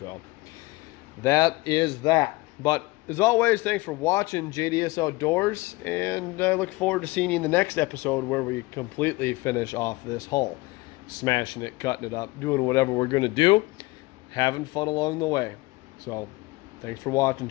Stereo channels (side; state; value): right; quieter; 22.1 dB